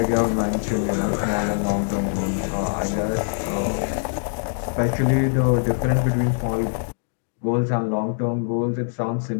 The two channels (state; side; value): silent; right; digital silence